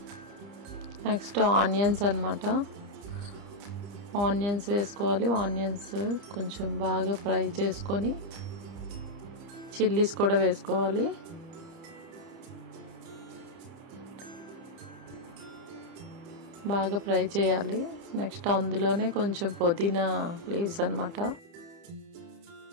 నెక్స్ట్ ఆనియన్స్ అన్నమాట. ఆనియన్స్ వేసుకోవాలి. ఆనియన్స్ కొంచెం బాగా ఫ్రై చేసుకొని చిల్లీస్ కూడా వేసుకోవాలి. బాగా ఫ్రై చేయాలి. నెక్స్ట్ అందులోనే కొంచెం పుదీనా లీవ్స్ అన్నమాట.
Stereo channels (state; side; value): late; left; 30 ms